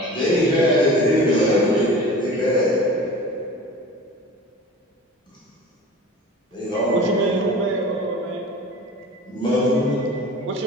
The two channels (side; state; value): both; normal; correlation 0.39